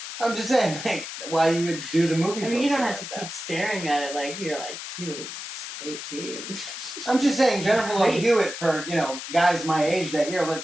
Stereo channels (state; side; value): noise; left; hiss, 9 dB below the sound